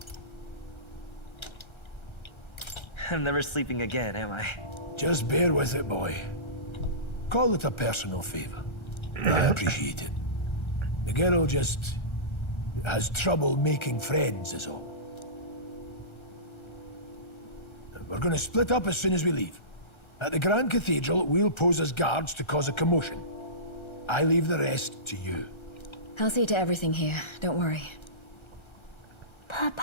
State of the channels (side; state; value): right; late; 1.3 ms